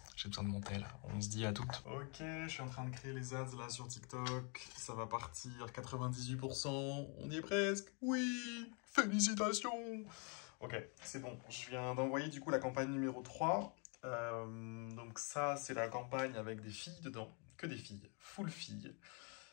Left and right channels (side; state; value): right; quieter; 35.8 dB